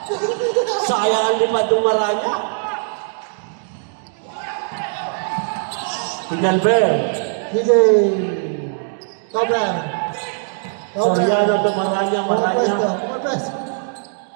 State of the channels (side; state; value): left; silent; 66 dB below the other